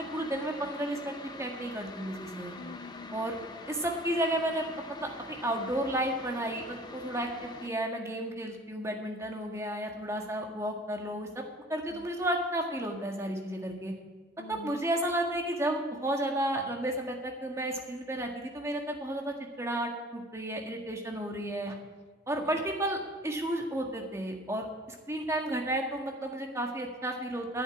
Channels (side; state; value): both; normal; correlation 0.48